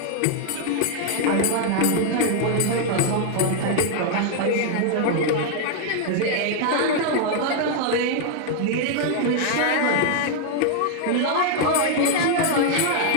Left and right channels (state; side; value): different; both; correlation 0.00